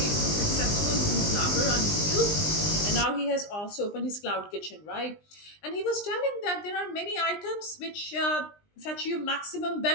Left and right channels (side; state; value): right; late; 20 ms